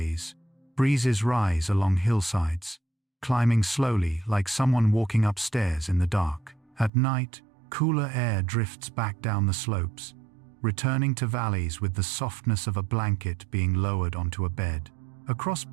breezes rise along hillsides, climbing slowly like someone walking upstairs in the dark. At night, cooler air drifts back down the slopes, returning to valleys with the softness of a blanket being lowered onto a bed. Across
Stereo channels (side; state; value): left; drops out; at 6.9 s